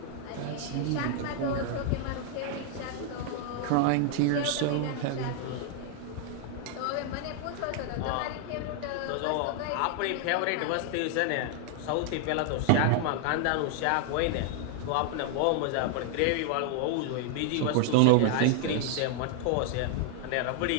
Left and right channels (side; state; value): both; different; correlation 0.00